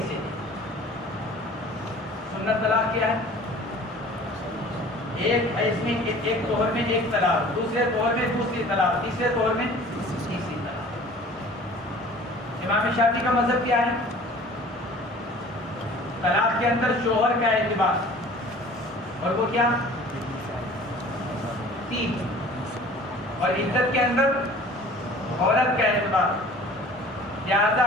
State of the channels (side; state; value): both; normal; correlation 0.46